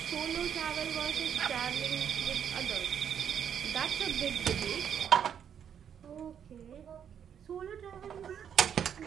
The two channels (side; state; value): left; quieter; 8.4 dB